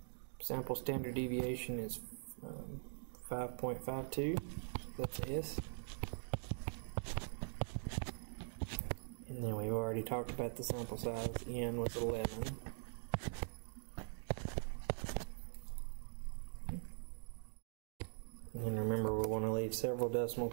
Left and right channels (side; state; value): left; silent; digital silence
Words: sample standard deviation is 5.52. That's S. And then we've already talked about the sample size. N was 11. And remember, we want to leave several decimal